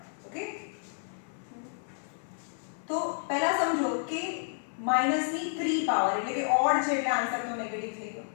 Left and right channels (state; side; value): silent; right; 57 dB below the other